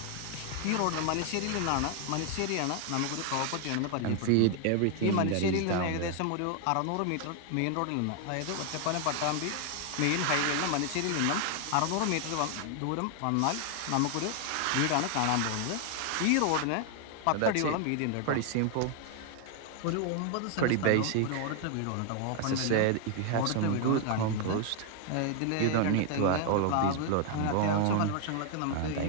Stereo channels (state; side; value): different; both; correlation 0.00